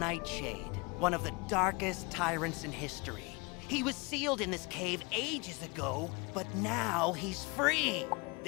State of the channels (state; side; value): quieter; right; 28.3 dB